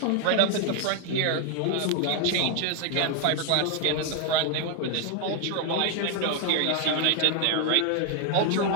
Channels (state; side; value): different; both; correlation 0.01